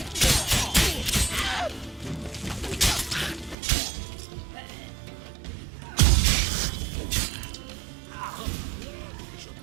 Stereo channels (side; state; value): left; drops out; at 3.6 s